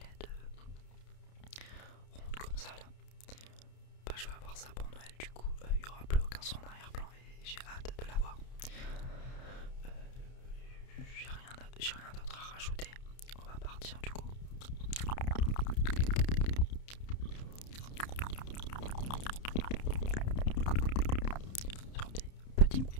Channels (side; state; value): right; late; 30 ms